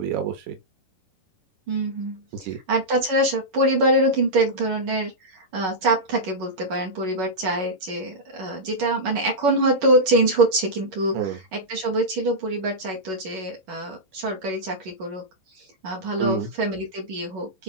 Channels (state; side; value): late; left; 11 ms